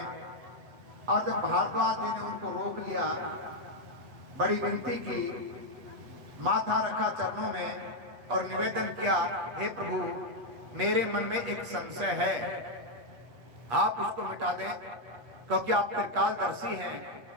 और जब भारद्वाज जी ने उनको रोक लिया, बड़ी विनती की, माथा रखा चरणों में और निवेदन किया, हे प्रभु मेरे मन में एक संशय है, आप उसको मिटा दें, क्योंकि आप त्रिकालदर्शी हैं,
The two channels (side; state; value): left; late; 8.1 ms